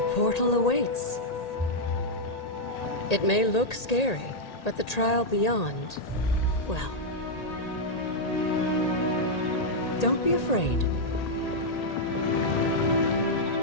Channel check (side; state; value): right; late; 1.8 ms